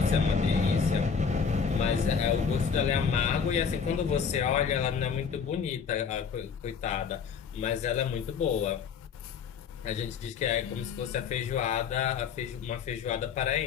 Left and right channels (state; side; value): quieter; right; 6.3 dB